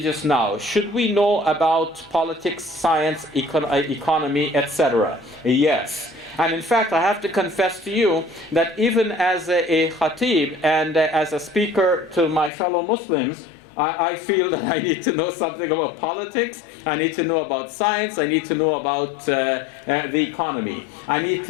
now. Should we know about politics, science, economy, etc.? Yes. And in fact, I have to confess to you that even as a khatib and as a speaker to my fellow Muslims, I feel that I need to know something about politics, I need to know about science, I need to know about the economy, I need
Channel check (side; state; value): right; drops out; at 12.5 s